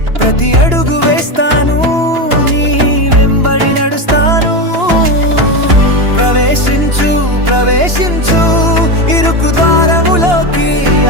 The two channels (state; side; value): late; left; 2.9 ms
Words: ప్రతి అడుగు వేస్తాను, నీ వెంబడి నడుస్తాను. ప్రవేశించు ప్రవేశించు ఇరుకు ద్వారములోకి,